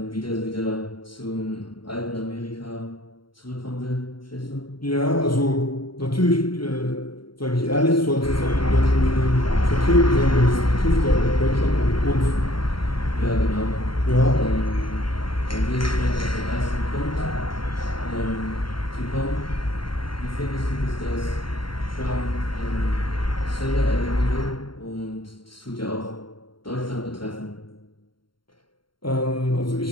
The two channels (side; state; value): right; late; 0.73 ms